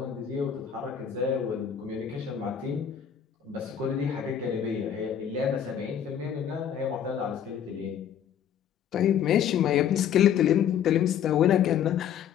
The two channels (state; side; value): quieter; right; 9.0 dB